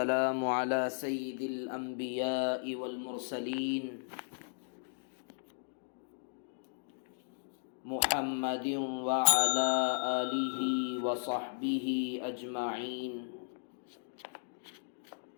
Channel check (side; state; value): right; silent; digital silence